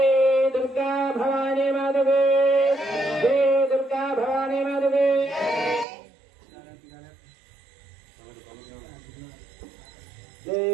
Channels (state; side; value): drops out; left; at 5.9 s